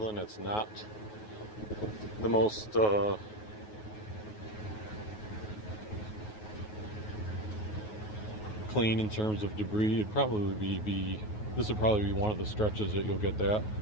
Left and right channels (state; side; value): late; right; 9.4 ms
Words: it's not the most clean in terms of debris. It'd probably be this would probably be one of the stretches that you'll get that.